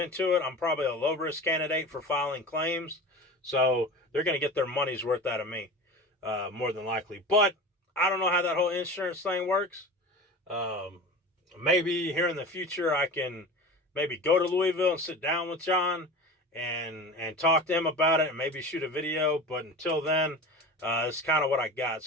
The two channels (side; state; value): both; normal; correlation 0.33